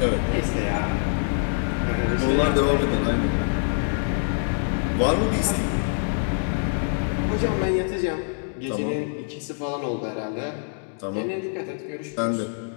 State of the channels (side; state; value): right; silent; digital silence